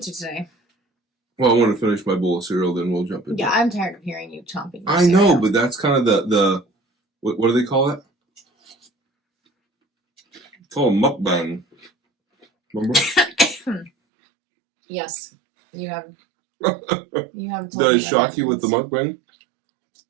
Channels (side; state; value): left; drops out; at 13.9 s